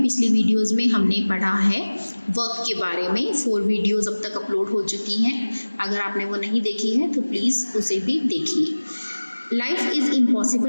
पिछली वीडियोस में हमने पढ़ा है वर्क के बारे में। 4 वीडियोस अब तक अपलोड हो चुकी हैं। अगर आपने वो नहीं देखी है तो प्लीज़ उसे भी देखिए। Life is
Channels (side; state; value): both; inverted; correlation -1.00